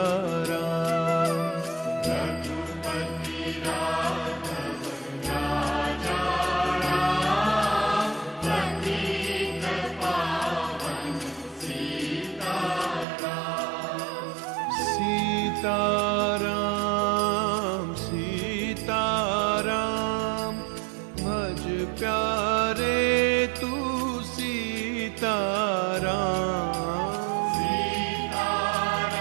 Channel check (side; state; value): left; drops out; at 13.1 s